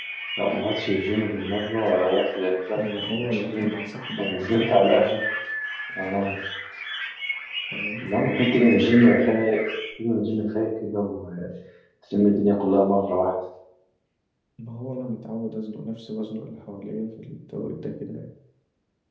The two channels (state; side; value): identical; both; correlation 1.00